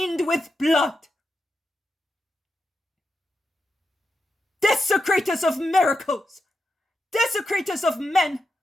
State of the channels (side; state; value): both; normal; correlation 0.87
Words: with blood. Desecrators of miracles, desecrators of men,